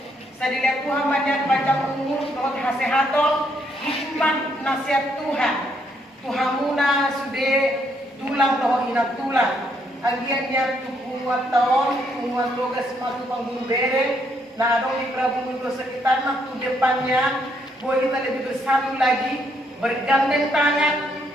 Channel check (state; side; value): normal; both; correlation 0.73